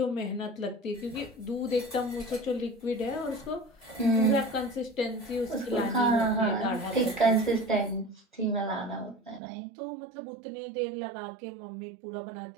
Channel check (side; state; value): left; drops out; at 9.4 s